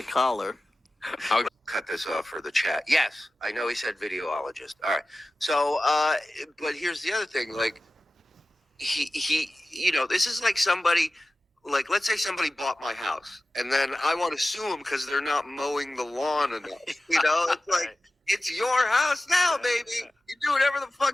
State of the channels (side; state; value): both; normal; correlation 0.95